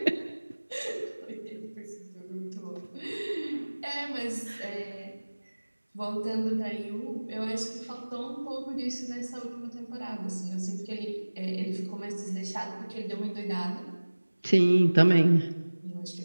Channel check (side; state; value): both; inverted; correlation -1.00